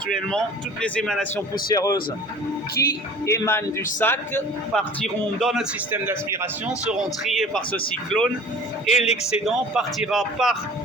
toutes les émanations poussiéreuses qui émanent du sac partiront dans notre système d'aspiration, seront triées par ce cyclone et l'excédent partira par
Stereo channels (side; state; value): both; normal; correlation 0.44